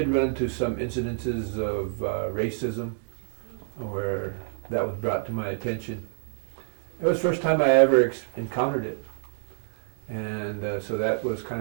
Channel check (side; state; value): left; silent; digital silence